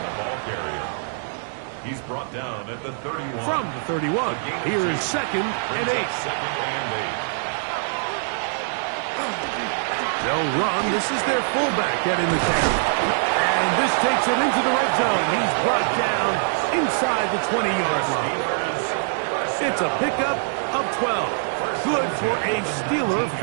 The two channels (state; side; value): silent; left; digital silence